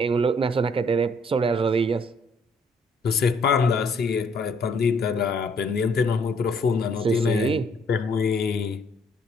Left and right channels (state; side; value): normal; both; correlation 0.65